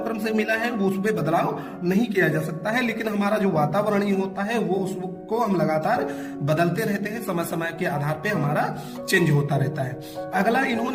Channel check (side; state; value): both; identical; correlation 1.00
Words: से मिला है वो उसमें बदलाव नहीं किया जा सकता है, लेकिन हमारा जो वातावरणीय होता है वो उसको हम लगातार बदलते रहते हैं। समय समय के आधार पे हमारा चेंज होता रहता है। अगला,